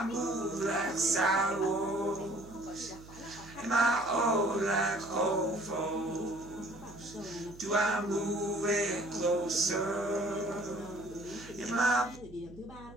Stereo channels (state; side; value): noise; right; hum, 19 dB below the sound